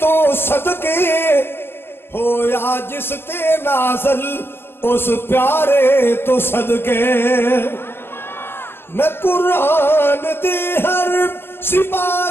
صدقے ہویا جس تے نازل اس پیارے تو صدقے میں قرآن دے ہر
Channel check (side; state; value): right; late; 0.11 ms